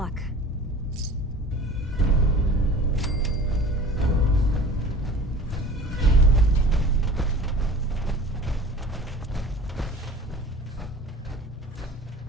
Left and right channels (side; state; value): both; normal; correlation 0.42